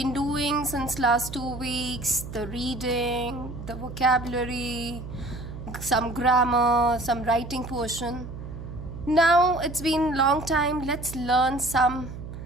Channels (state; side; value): noise; right; hum, 10 dB below the sound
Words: doing since last 2 weeks the reading, the vocabulary, some grammar, some writing portion. Now, it's been long time. Let's learn some